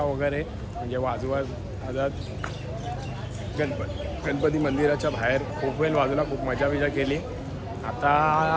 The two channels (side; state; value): both; identical; correlation 1.00